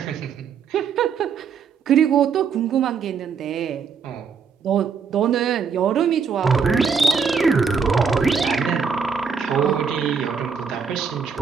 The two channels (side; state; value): left; quieter; 6.1 dB